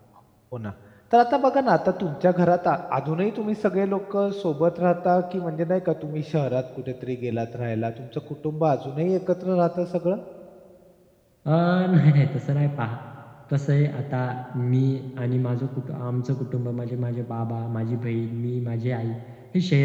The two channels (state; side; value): identical; both; correlation 1.00